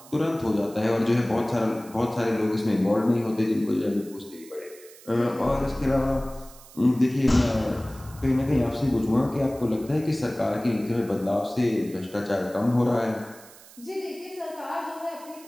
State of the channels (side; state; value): right; noise; hiss, 21 dB below the sound